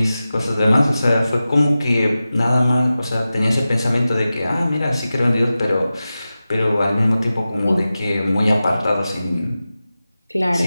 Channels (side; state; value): both; inverted; correlation -0.94